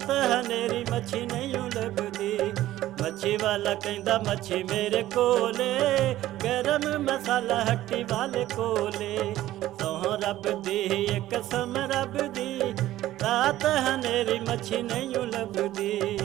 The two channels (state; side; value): quieter; left; 14.6 dB